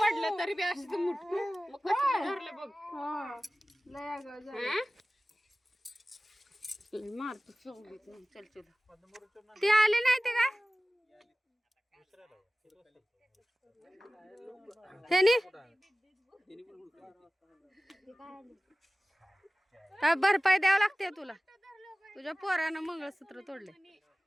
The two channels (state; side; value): normal; both; correlation 0.97